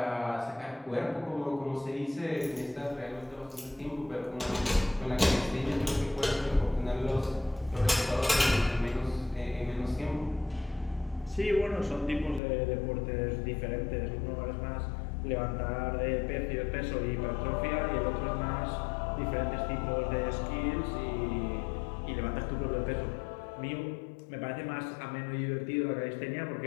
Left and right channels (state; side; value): drops out; right; at 12.4 s